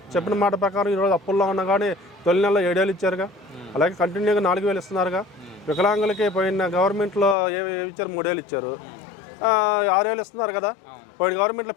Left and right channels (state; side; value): drops out; right; at 7.4 s